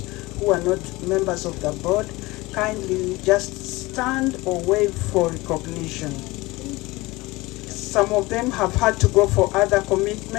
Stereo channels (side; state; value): right; quieter; 21.3 dB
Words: who are not members of the board. Kindly just stand or wave for recognition. Some of them have had to go for other